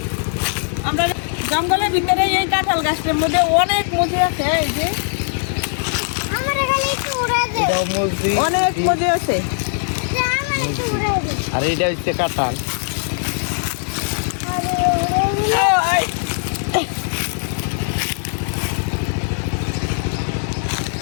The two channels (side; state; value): right; silent; 64 dB below the other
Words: আমরা জঙ্গলের ভিতরে এই কাঁঠাল গাছটার মধ্যে অনেক মজা আছে। এই যে এটাও মসজিদ অনেক মজা আছে। আর এটা হচ্ছে কাঁঠাল।